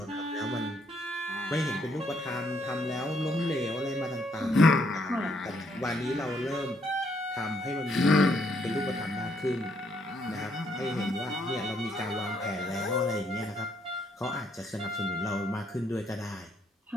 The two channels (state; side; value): normal; both; correlation 0.71